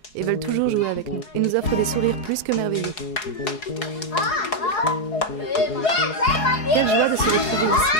et veulent toujours jouer avec nous et nous offrent des sourires plus que merveilleux. Quelle joie de se retrouver ici.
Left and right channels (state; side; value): late; right; 4.7 ms